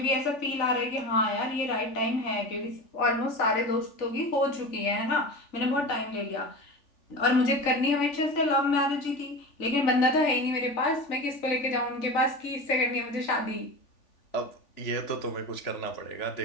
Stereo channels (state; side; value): late; right; 3.4 ms